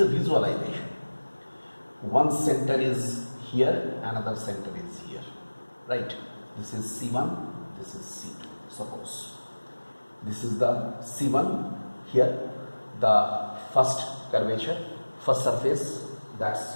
a visualization. One center is here, another center is here. Right? This is C1, this is C2. Suppose this is the C1, here the first curvature, first surface,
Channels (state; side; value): inverted; both; correlation -1.00